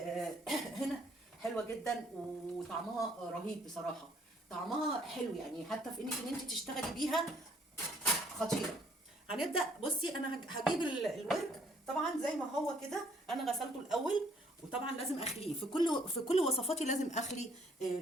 هنا حلوة جدا وطعمها رهيب بصراحة. طعمها حلو يعني، حتى في انك ان انت تشتغلي بيها خطيره. هنبدا. بصي انا هجيب الورك طبعا زي ما هو كده، انا غسلته الاول، وطبعا لازم اخليه في كل وصفاتي، لازم اخلي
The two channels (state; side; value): normal; both; correlation 0.64